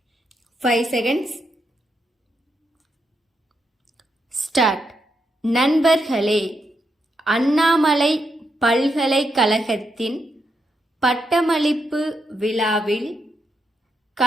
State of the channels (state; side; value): normal; both; correlation 0.82